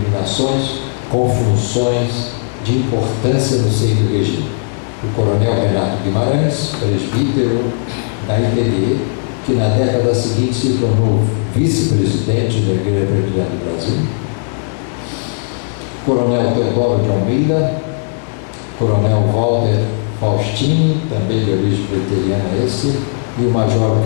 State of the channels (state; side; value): silent; right; digital silence